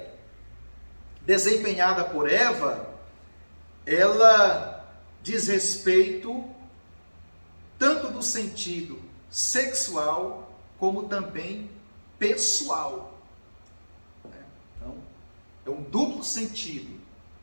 desempenhada por Eva, ela diz respeito tanto do sentido sexual como também pessoal. Então, é um duplo sentido.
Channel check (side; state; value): both; inverted; correlation -1.00